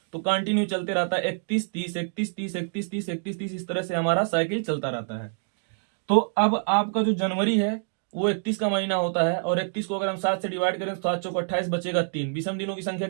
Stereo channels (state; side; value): silent; left; digital silence